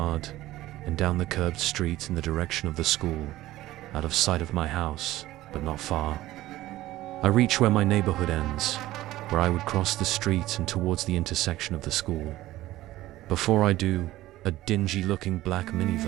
and down the curved street in the direction of the school, out of sight of my house, but not far. I reach where my neighborhood ends, where I would cross the street and towards the intersection of the school. Before I do, a dingy-looking black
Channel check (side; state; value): left; quieter; 16.1 dB